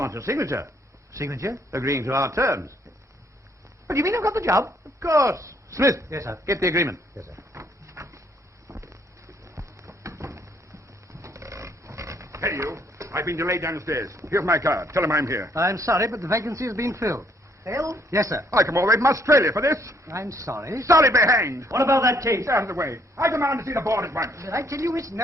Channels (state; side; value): normal; both; correlation 0.68